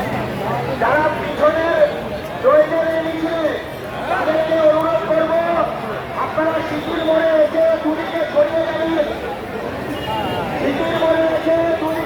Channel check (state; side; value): identical; both; correlation 1.00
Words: যারা পিছনে রয়েছেন এই মিছিলে তাদেরকে অনুরোধ করবো আপনারা শিশির মোড়ে এসে দুদিকে ছড়িয়ে যাবেন। শিশির মোড়ে এসে